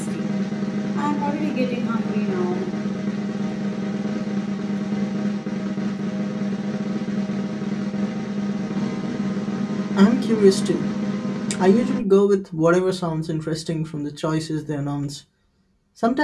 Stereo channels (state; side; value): identical; both; correlation 1.00